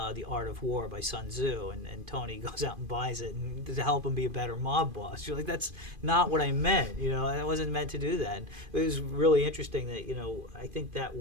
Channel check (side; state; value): left; late; 2.5 ms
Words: Art of War by Sun Tzu, and Tony goes out and buys it and to help him be a better mob boss. You're like, that's not what I meant. I wasn't meant to do that. And it was really interesting that I think that